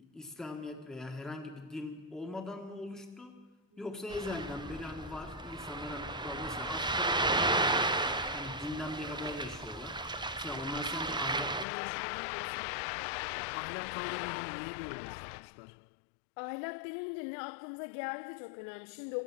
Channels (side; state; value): right; drops out; at 11.7 s